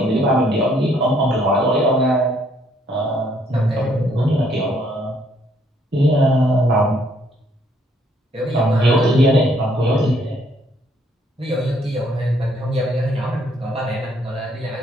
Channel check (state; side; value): normal; both; correlation 0.67